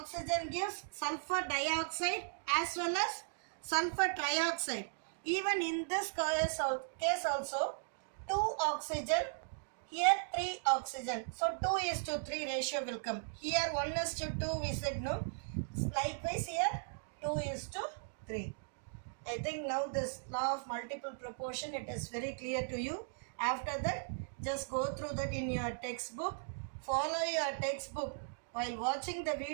gives sulfur dioxide as well as sulfur trioxide. Even in this case also 2 oxygen, here 3 oxygen. So 2:3 ratio will come. Here 1:2 we said no. Likewise here 2:3. I think now this law of multiple proportion it is very clear to you. After that just go through that in your textbook. Follow your textbook. While watching the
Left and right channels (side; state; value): left; silent; digital silence